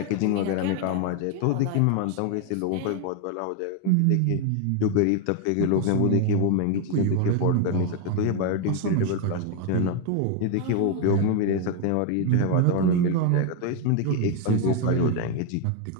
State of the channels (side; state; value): both; different; correlation 0.00